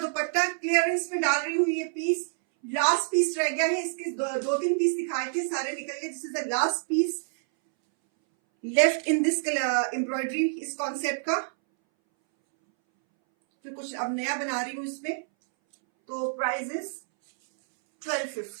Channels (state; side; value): silent; left; 60 dB below the other